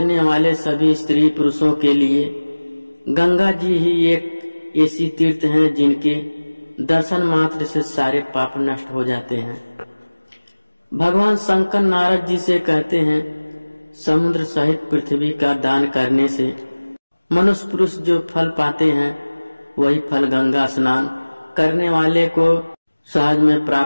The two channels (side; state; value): both; inverted; correlation -1.00